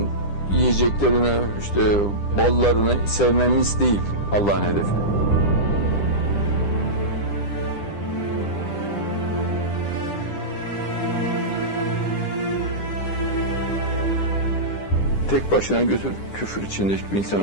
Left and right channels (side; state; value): right; late; 10 ms